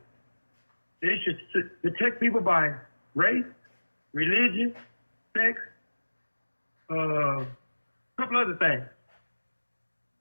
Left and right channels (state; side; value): inverted; both; correlation -1.00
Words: that it should protect people by race, religion, sex, a couple other things.